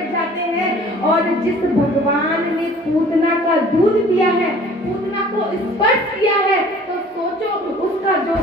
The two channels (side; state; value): both; normal; correlation 0.50